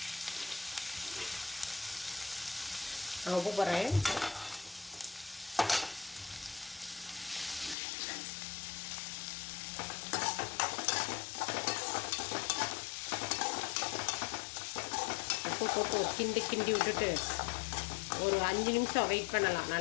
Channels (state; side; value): drops out; right; at 7.8 s